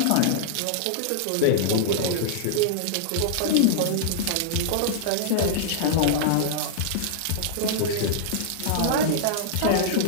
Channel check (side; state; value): both; different; correlation -0.01